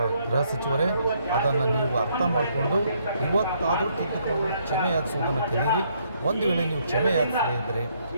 ಗೃಹ ಸಚಿವರೇ. ಅದನ್ನು ನೀವು ಅರ್ಥ ಮಾಡಿಕೊಂಡು ಇವತ್ತಾದರೂ ತಿದ್ದುಕೊಂಡು ಕ್ಷಮೆ ಯಾಚಿಸುವುದನ್ನು ಕಲಿಯಿರಿ. ಒಂದು ವೇಳೆ ನೀವು ಕ್ಷಮೆ ಯಾಚಿಸದೇ ಇದ್ದರೆ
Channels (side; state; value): both; inverted; correlation -0.70